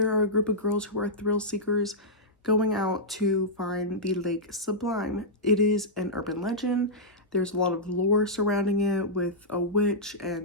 are a group of girls who are thrill seekers going out to find the Lake Sublime. It is an urban legend. There's a lot of lore surrounding it with a witch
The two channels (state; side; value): normal; both; correlation -0.10